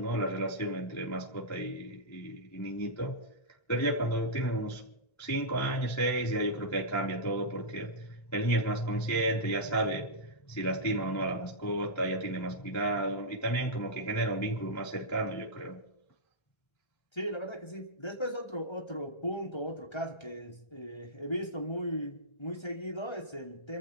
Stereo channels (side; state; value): right; late; 1.3 ms